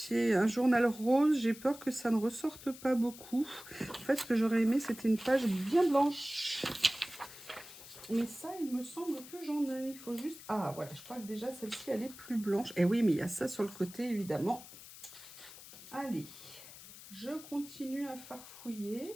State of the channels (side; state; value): left; noise; hiss, 16 dB below the sound